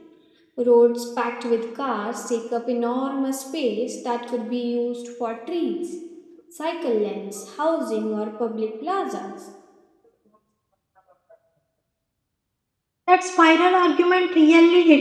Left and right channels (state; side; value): identical; both; correlation 1.00